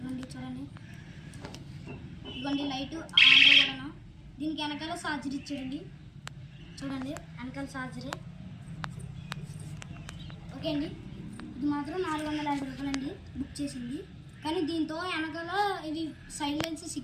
చూడండి ఇదిగోండి లైట్ ఆంధ్ర కూడా. దీనికి వెనకాల ఛార్జర్ ఇచ్చాడండి. చూడండి వెనకాల ఛార్జరే. ఓకే అండి, ఇది మాత్రం 450 రూపాయలండి బుక్ చేసింది. కానీ దీంతో వెనకాల ఇవి సైలెన్స్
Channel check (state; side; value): identical; both; correlation 1.00